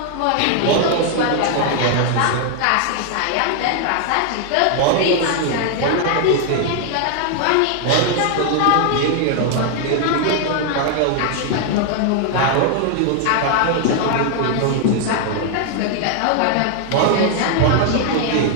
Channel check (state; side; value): different; both; correlation 0.00